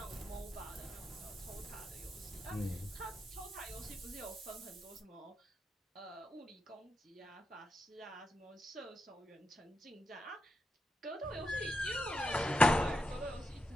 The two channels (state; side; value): normal; both; correlation 0.85